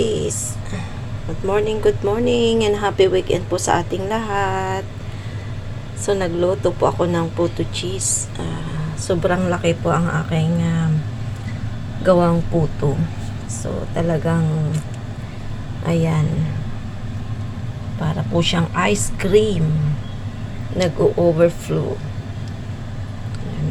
Good morning, and happy weekend po sa ating lahat. So, nagluto po ako ng puto cheese. Sobrang laki po ang aking gawang puto. So, talagang, ayan, para po siyang ice cream. Nag-overflow.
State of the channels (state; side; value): identical; both; correlation 1.00